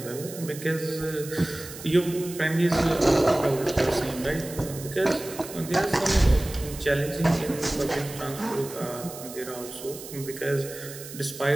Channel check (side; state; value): right; noise; hiss, 13 dB below the sound